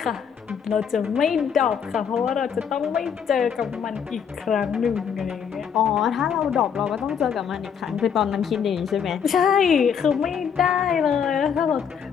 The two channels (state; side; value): quieter; right; 7.4 dB